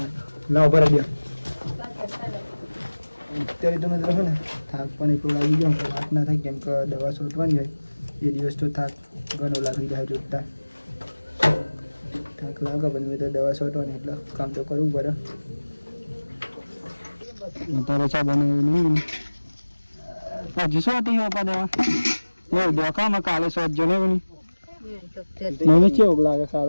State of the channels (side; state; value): both; inverted; correlation -1.00